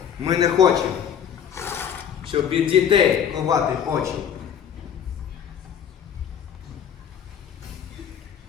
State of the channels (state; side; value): quieter; right; 8.5 dB